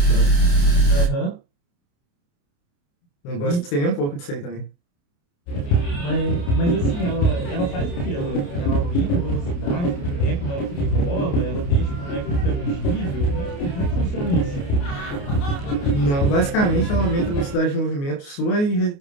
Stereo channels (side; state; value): right; late; 29 ms